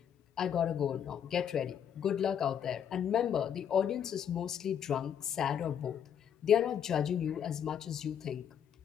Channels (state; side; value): quieter; right; 8.7 dB